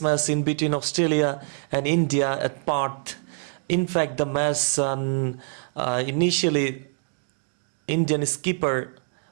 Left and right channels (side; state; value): left; silent; digital silence